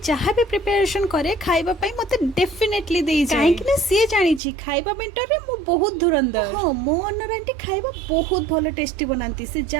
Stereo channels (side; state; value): left; drops out; at 4.4 s